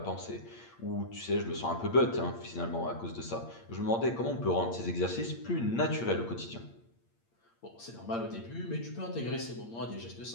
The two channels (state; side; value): late; right; 8.7 ms